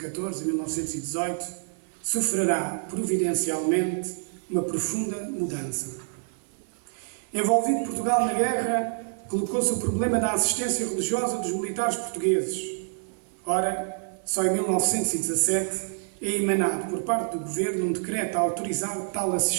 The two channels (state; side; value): silent; left; 58 dB below the other